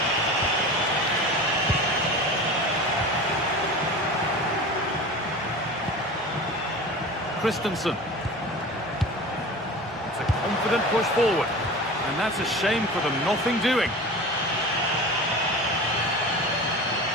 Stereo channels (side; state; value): both; normal; correlation 0.34